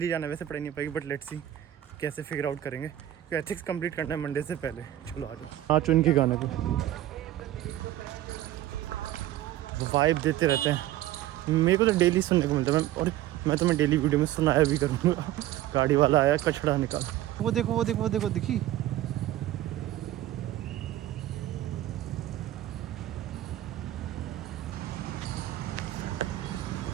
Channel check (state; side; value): quieter; left; 13.7 dB